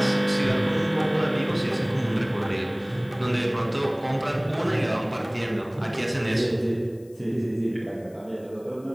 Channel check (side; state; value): left; noise; hiss, 29 dB below the sound